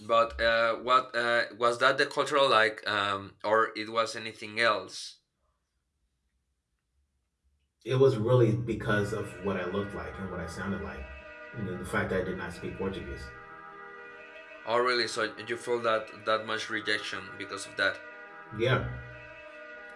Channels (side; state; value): both; identical; correlation 1.00